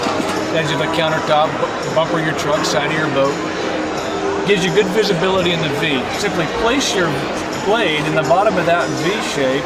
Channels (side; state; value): both; identical; correlation 1.00